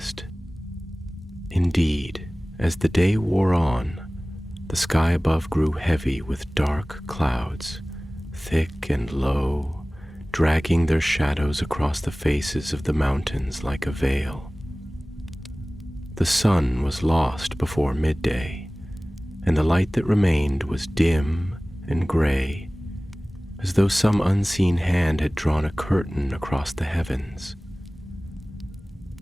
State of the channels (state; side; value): normal; both; correlation 0.98